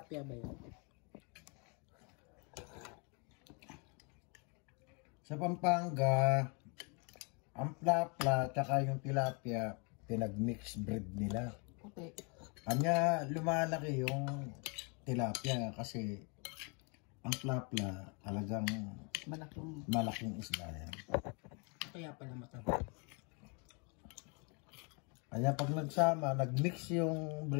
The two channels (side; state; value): right; quieter; 33.8 dB